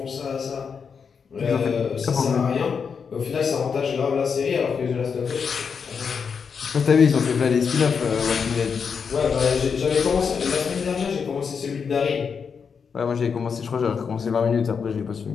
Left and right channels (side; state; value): right; quieter; 6.1 dB